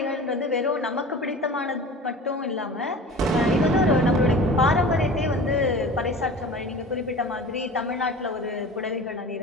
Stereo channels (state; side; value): normal; both; correlation 0.38